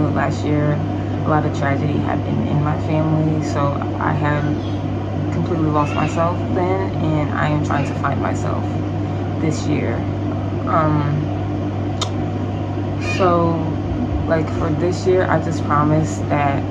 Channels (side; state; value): both; identical; correlation 1.00